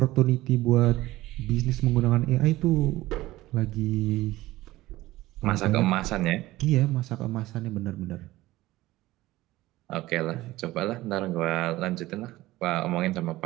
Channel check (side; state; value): left; quieter; 17.4 dB